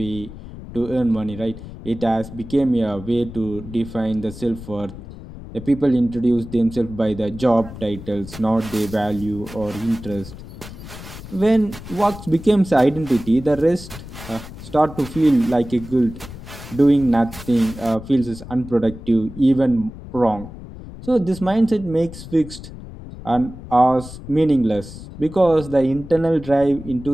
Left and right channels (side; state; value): left; noise; rumble, 14 dB below the sound